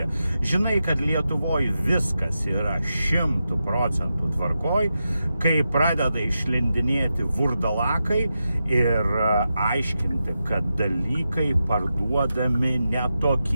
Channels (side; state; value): both; inverted; correlation -0.89